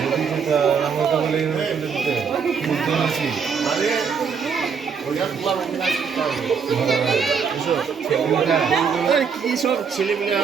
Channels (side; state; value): left; quieter; 6.1 dB